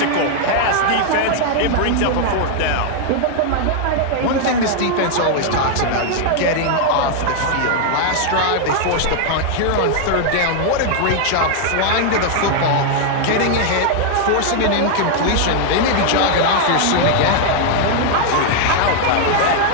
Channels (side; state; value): both; different; correlation 0.00